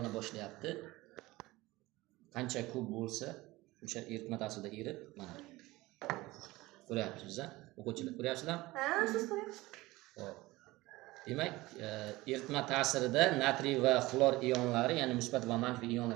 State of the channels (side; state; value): left; quieter; 19.7 dB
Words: boshlayapti. Qancha ko'p bo'lsa, o'sha eritma ta'sirida erib, mana ko'ryapsiz-a? O'quvchilar ko'ryapsizlar? Ha, siz ko'ryapsiz. Xo'p. Demak, eritma ta'sirida natriy va xlor ionlari, ya'ni musbat va manfiy